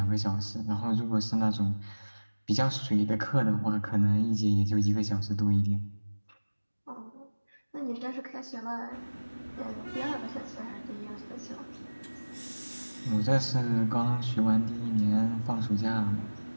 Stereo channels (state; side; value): inverted; both; correlation -1.00